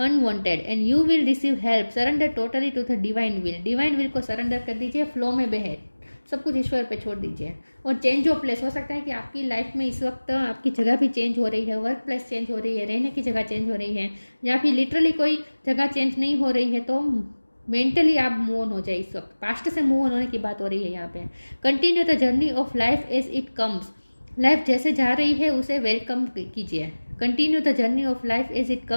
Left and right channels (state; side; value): inverted; both; correlation -1.00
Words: and you will receive help. Surrender totally to the divine will, divine will को सरेंडर कर दीजिए, फ्लो में बहे, सब कुछ ईश्वर पे छोड़ दीजिए। और चेंज ऑफ प्लेस, हो सकता है कि आपकी लाइफ में इस वक्त आपकी जगह भी चेंज हो रही है, वर्क प्लेस चेंज हो रही है, रहने की जगह चेंज हो रही है, या फिर लिटरली कोई जगह चेंज नहीं हो रही है, तो मेंटली आप मूव ऑन हो जाए। इस वक्त पास्ट से मूव ऑन होने की बात हो रही है यहाँ पे। Continue the journey of life as it comes, life जैसे जा रही है उसे वेलकम कीजिए। Continue the journey of life as it